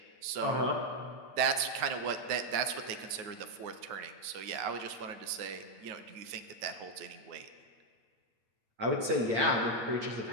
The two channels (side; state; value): left; late; 8.8 ms